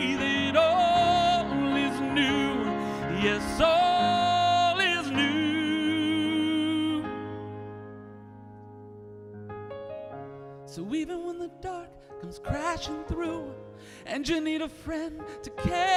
that all is new. Yes, all is new. So even when the dark comes crashing through, and you need a friend to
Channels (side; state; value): both; identical; correlation 1.00